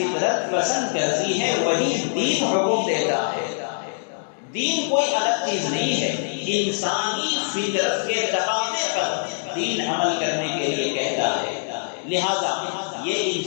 پسند کرتی ہے وہی دین حکم دیتا ہے۔ دین کوئی الگ چیز نہیں ہے، انسانی فطرت کے تقاضے پر دین عمل کرنے کے لیے کہتا ہے۔ لہذا یہ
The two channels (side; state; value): right; silent; digital silence